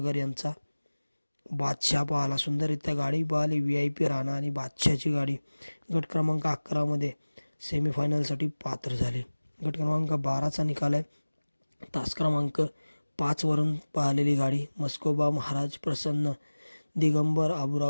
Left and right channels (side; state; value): both; inverted; correlation -1.00